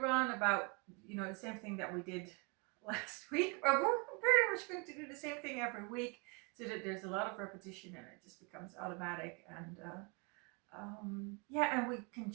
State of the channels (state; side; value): quieter; left; 32.2 dB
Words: about the same thing that we did last week. We're pretty much going to do the same thing every week, so that there's a lot of repetition and it just becomes automatic. And and we can